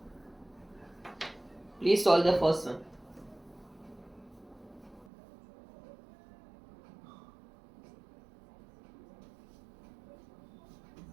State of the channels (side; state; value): left; drops out; at 5.1 s